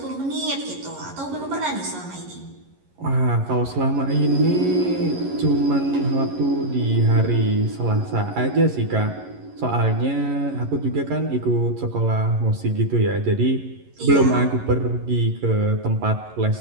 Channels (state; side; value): late; left; 11 ms